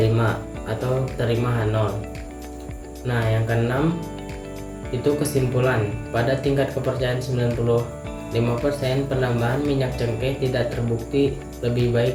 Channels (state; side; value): identical; both; correlation 1.00